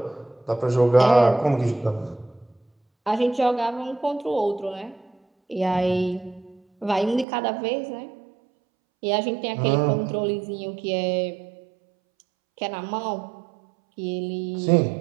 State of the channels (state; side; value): drops out; left; at 7.2 s